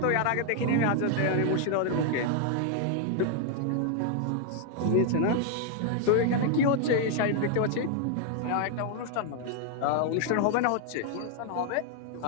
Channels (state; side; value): different; both; correlation 0.00